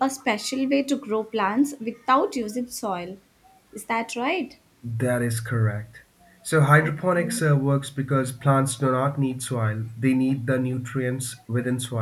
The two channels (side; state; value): both; identical; correlation 1.00